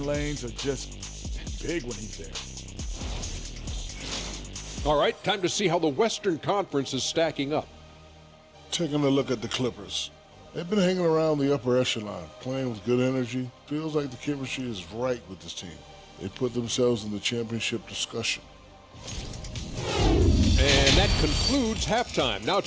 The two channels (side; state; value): both; identical; correlation 1.00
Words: lanes are just big when he's there. All right, time to see how the Western Conference is stacking up. Taking a look at the Clippers. They've been hanging around the upper echelon, playing with good energy. Feels like the chemistry is right with this team. They put themselves in the championship discussion. And that concludes halftime. Now